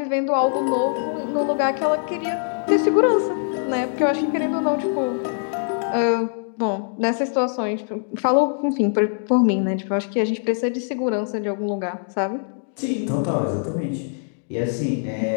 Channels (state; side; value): silent; right; digital silence